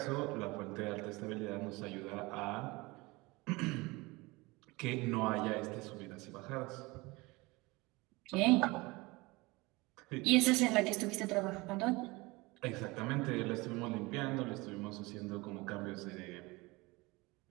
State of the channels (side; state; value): left; quieter; 23.4 dB